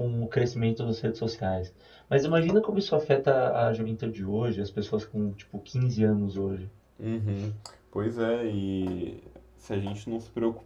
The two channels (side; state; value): both; identical; correlation 1.00